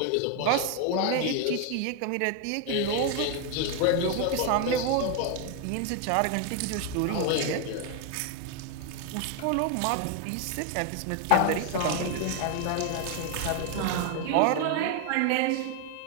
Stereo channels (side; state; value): both; different; correlation 0.01